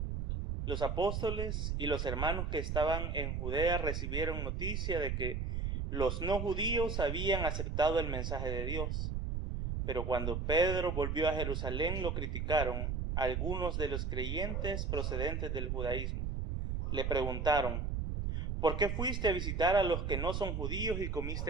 Los apóstoles y los hermanos que estaban en Judea recibieron noticia de que los no judíos habían aceptado el mensaje de Dios. Pero cuando Pedro volvió a Jerusalén lo criticaron algunos de los creyentes procedentes del judaísmo. Le preguntaron: ¿por qué fuiste a visitar a los que no son judíos y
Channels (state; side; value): noise; right; rumble, 1 dB below the sound